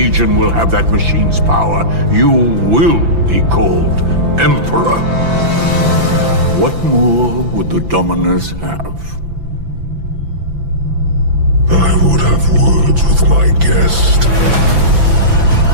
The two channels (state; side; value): late; left; 5.9 ms